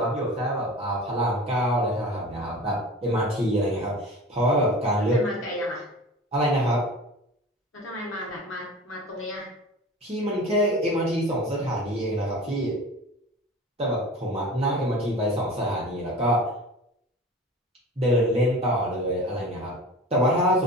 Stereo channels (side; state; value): both; normal; correlation 0.36